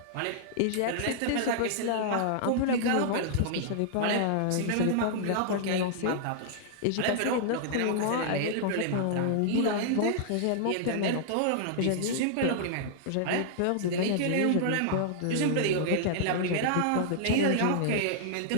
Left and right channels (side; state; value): both; different; correlation -0.01